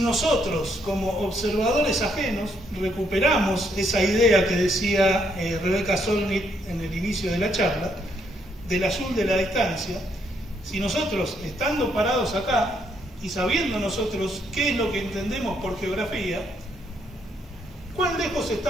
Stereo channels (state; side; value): normal; both; correlation 0.73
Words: como observadores ajenos recuperamos esa idea que decía Rebecca Solnit en el inicio de la charla, del azul de la distancia, si nosotros, estando parados acá y sabiendo nosotros qué es lo que entendemos por geografía, ¿cuán lejos